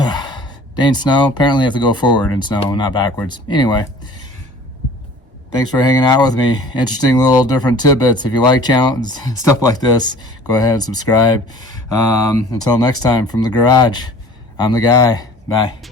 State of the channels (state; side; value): normal; both; correlation 0.46